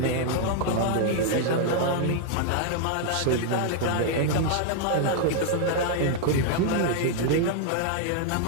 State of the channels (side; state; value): both; different; correlation 0.00